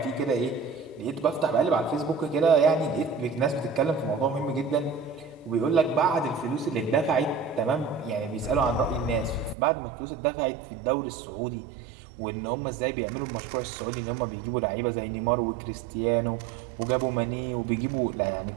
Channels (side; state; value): left; drops out; at 9.6 s